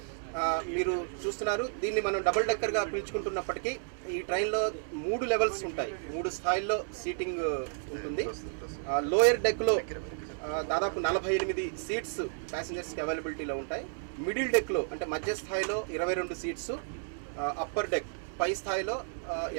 మీరు చూస్తున్నారు, దీన్ని మనం డబుల్ డెక్కర్గా పిలుచుకుంటున్నప్పటికీ ఈ ట్రైన్లో 3 లెవెల్స్ ఉంటాయి, 3 స్థాయిల్లో సీటింగ్ ఉంటుంది. లోయర్ డెక్లో దాదాపు 48 సీట్స్ ప్యాసింజర్స్కి అవైలబిలిటీలో ఉంటాయి. మిడిల్ డెక్లో అంటే మధ్య స్థాయిలో 22 సీట్స్, అప్పర్ డెక్ పై స్థాయిలో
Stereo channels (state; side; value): silent; left; 57 dB below the other